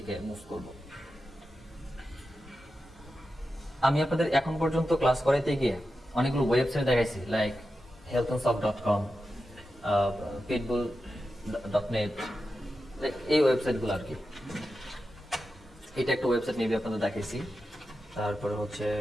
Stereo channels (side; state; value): both; normal; correlation 0.90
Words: মুভ করব। আমি আপনাদের এখন পর্যন্ত ক্লাস করাইতে গিয়ে অনেকগুলো ওয়েবসাইট দেখাইছি, লাইক healthandsoft.com, pitbull.net, এই ওয়েবসাইটগুলো আর কি। এটা একটা ওয়েবসাইট মেবি আপনাদের দেখাইছি। তারপরে হচ্ছে